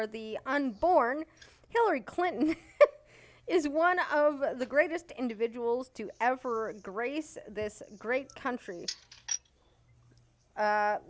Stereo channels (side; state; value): both; identical; correlation 1.00